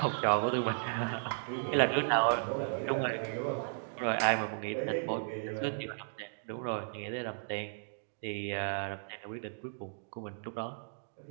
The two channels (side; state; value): left; silent; digital silence